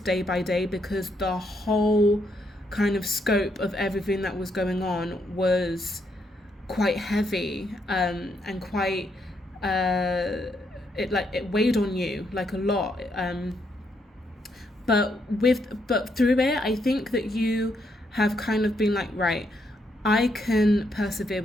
by day, because the whole kind of scope of everything that was going on was quite heavy and quite it weighed on you like a lot. But through it, I think that you have kind of been like, right, I can persevere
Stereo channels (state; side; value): normal; both; correlation 0.76